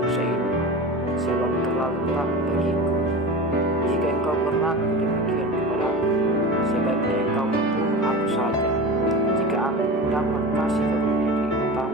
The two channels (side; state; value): both; normal; correlation 0.29